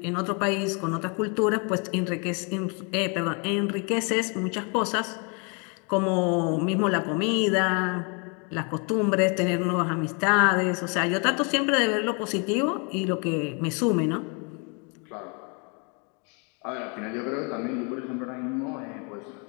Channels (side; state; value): right; quieter; 34.7 dB